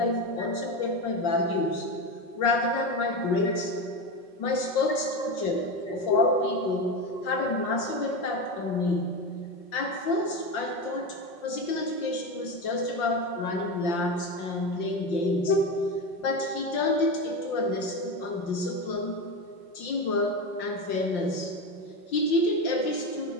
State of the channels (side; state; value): right; late; 5.7 ms